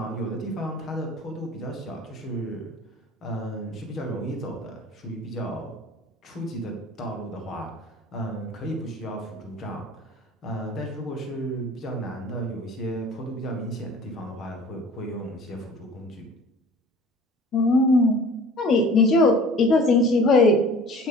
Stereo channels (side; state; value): both; normal; correlation 0.45